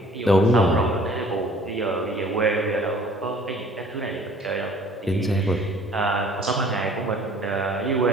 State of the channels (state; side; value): normal; both; correlation 0.53